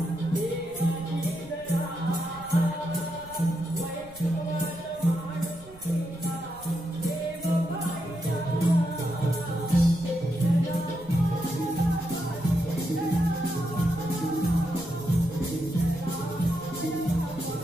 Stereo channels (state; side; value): noise; right; rumble, 20 dB below the sound